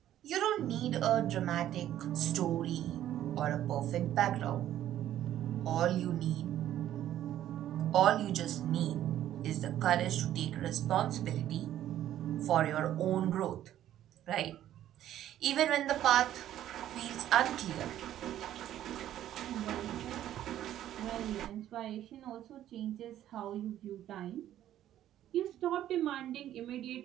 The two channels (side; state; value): left; quieter; 12.1 dB